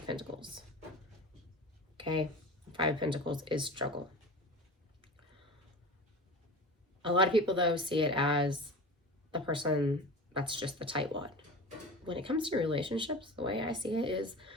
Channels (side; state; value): both; normal; correlation 0.33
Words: Pentacles. Okay, Five of Pentacles is struggle. A lot of people, though, see it as the person that's just the tightwad. When it comes to relationships, the way I see it is